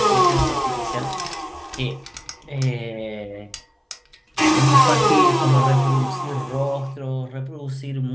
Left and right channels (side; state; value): both; identical; correlation 1.00